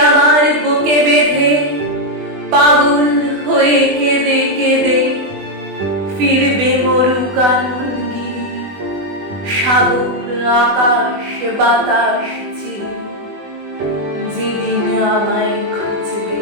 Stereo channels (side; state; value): left; late; 20 ms